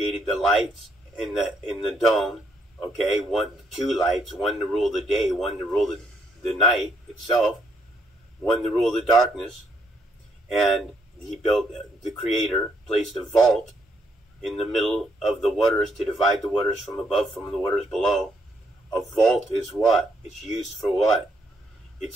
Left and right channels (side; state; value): both; normal; correlation 0.73